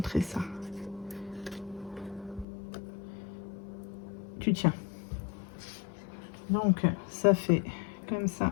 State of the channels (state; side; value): drops out; right; at 2.5 s